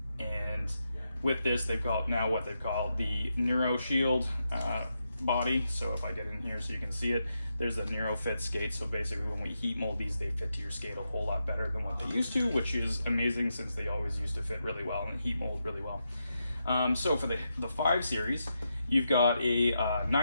with this, they've got now what they've called the Neuro Shield body. So if I get in here so you can see it, there's a Neuro Fit skate. So basically when we heat mold these, they fit to your skate a whole lot better than what they used to, which is amazing since they always used to fit really well and heat mold really well. So for the 5 series, you've got a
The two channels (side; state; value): both; inverted; correlation -0.85